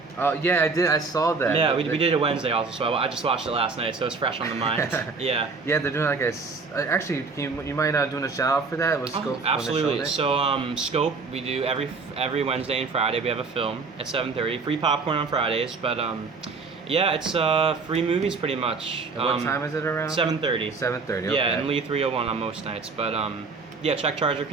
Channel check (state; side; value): quieter; left; 4.4 dB